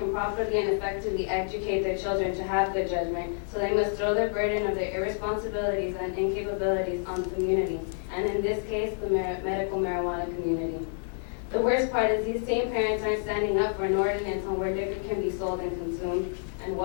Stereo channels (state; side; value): silent; right; digital silence